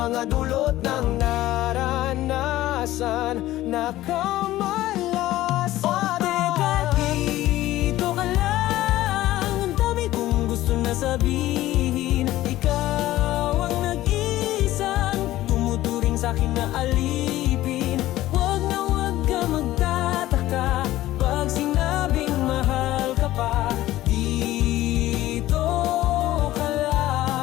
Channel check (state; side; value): quieter; right; 15.5 dB